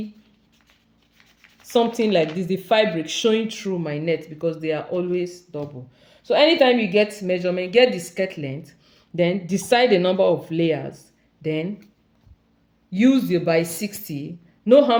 something like this, the fabric showing through my net, because they are always double. So anytime you get measurement, get the skirt length, then decide the number of layers, then use your by 60, know how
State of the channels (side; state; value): both; identical; correlation 1.00